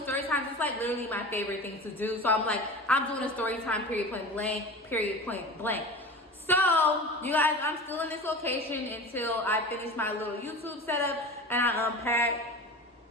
story times. It's like literally my favorite thing to do. So I'm like, I'm doing a story time, period, point blank. So, you guys, I'm still in this location until I finish my little YouTube setup and I unpack.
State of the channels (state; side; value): normal; both; correlation 0.33